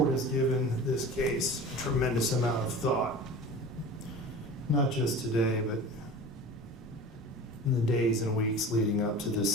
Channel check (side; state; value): both; normal; correlation 0.36